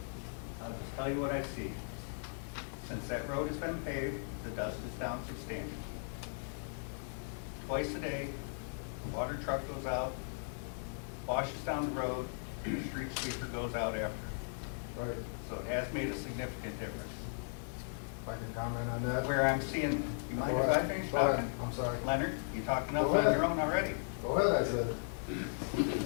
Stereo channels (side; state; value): right; silent; 53 dB below the other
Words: I'll just tell you what I see. Since that road has been paved, the dust is down substantially. Twice a day, the water truck goes out, washes down the road, and the street sweeper goes out after. Right. So it has made a significant difference. If I can comment on that? Where I'm seeing, you mind if I finish Go ahead. talking? I'm sorry. Leonard, you talking enough Go ahead. on your own already? Go ahead, I said.